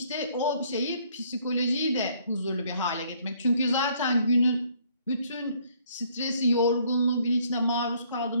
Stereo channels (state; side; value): inverted; both; correlation -0.64